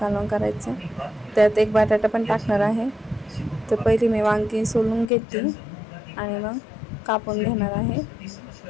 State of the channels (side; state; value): right; drops out; at 5.1 s